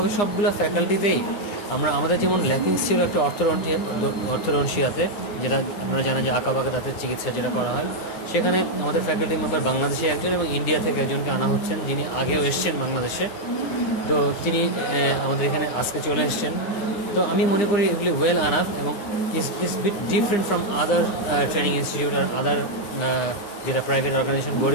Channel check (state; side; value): late; right; 9.8 ms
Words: সবগুলো ফ্যাকাল্টিতেই আমাদের যেমন ল্যাকিংস ছিল একটা অর্থোডন্টিয়াতে, যেটা আপনারা জানেন যে আঁকাবাঁকা দাঁতের চিকিৎসা যেটা করা হয়, সেখানে আমাদের ফ্যাকাল্টি মেম্বার বাংলাদেশে একজন এবং ইন্ডিয়া থেকে একজনকে আনা হচ্ছেন, যিনি আগেও এসছেন বাংলাদেশে। তো তিনি আমাদের এখানে আজকে চলে এসছেন। তো আমি মনে করি এগুলি ওয়েল আনাফ এবং is bit different from other training institute আর আদার যেটা প্রাইভেট অর্গানাইজেশন